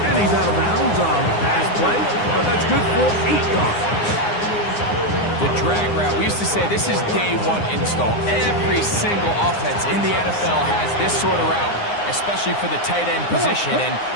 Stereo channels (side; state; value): right; late; 9.7 ms